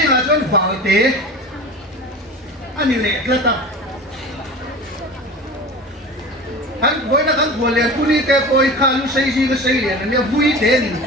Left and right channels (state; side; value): normal; both; correlation 0.35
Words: là chọn vào thế anh lệ cái ta anh với nó anh vừa liền tu đi cái coi khá lúc xây riêng cái xây liền anh vui thế thì